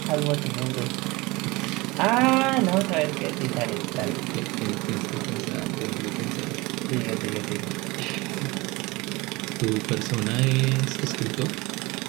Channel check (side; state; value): left; quieter; 23.1 dB